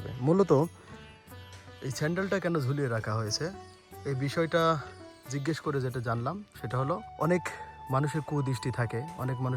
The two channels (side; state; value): both; identical; correlation 1.00